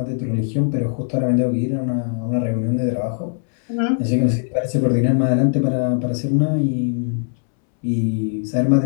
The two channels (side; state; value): right; silent; 66 dB below the other